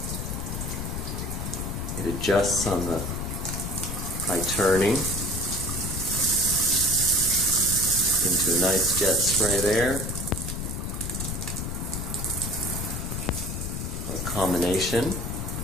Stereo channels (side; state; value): left; noise; rumble, 4 dB below the sound